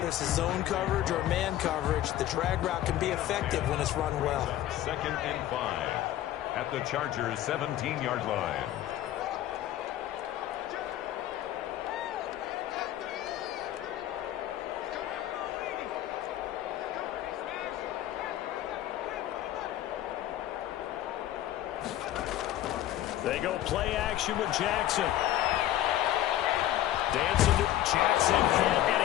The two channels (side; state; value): right; quieter; 13.2 dB